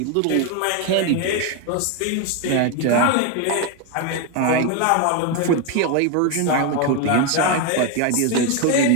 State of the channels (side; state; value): both; different; correlation 0.02